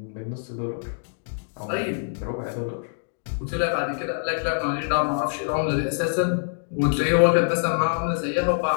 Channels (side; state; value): right; silent; digital silence